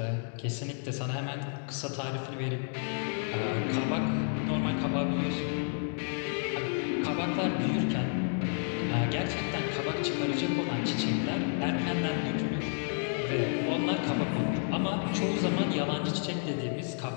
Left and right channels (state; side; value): silent; right; 57 dB below the other